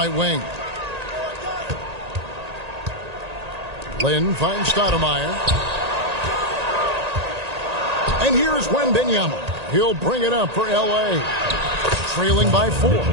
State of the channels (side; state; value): left; late; 1.8 ms